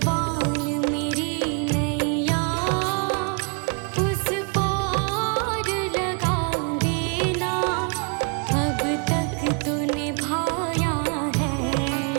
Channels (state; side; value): quieter; left; 36.8 dB